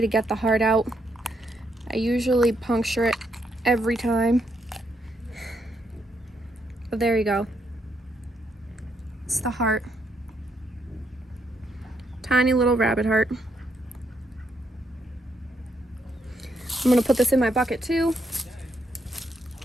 to get the heart out. I usually puncture it every time. But there you go. It's the heart. Tiny little rabbit heart. I'm gonna put this in my bucket too.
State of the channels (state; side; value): normal; both; correlation 0.77